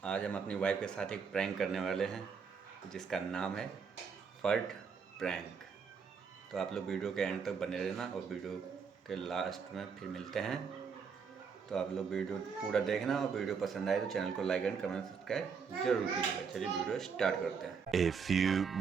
आज हम अपनी वाइफ के साथ एक प्रैंक करने वाले हैं जिसका नाम है फर्ट प्रैंक। तो आप लोग वीडियो के एंड तक बने रहना और वीडियो के लास्ट में फिर मिलते हैं। तो आप लोग वीडियो पूरा देखना और वीडियो पसंद आए तो चैनल को लाइक एंड कमेंट सब्सक्राइब जरूर कीजिएगा। चलिए वीडियो स्टार्ट करते हैं। A few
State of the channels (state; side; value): quieter; left; 6.0 dB